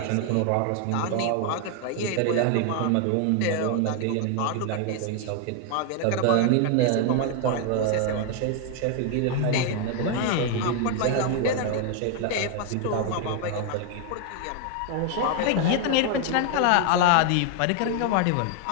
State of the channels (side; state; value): both; different; correlation 0.00